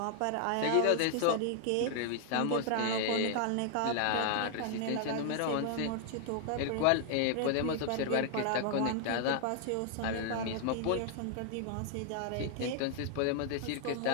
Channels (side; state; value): both; different; correlation 0.00